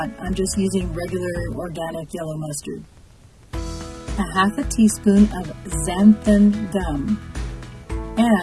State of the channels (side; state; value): both; identical; correlation 1.00